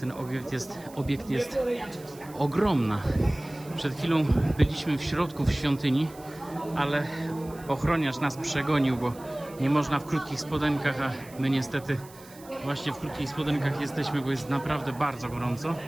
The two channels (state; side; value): noise; right; hiss, 22 dB below the sound